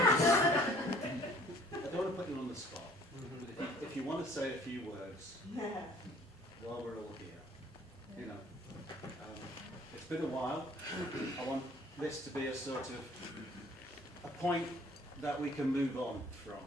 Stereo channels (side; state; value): both; normal; correlation 0.54